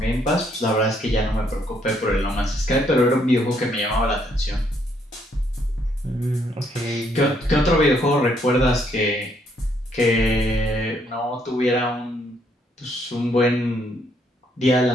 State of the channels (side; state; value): both; normal; correlation 0.71